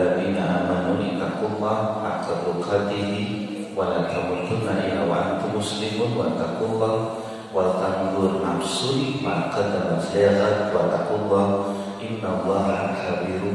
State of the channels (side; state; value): both; identical; correlation 1.00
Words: amanu ittaqullaha haqqa tuqatih wa la tamutunna illa wa antum muslimun wa taqullaha wal tanzur nafsun ma qaddamat lighad wa taqullaha innallaha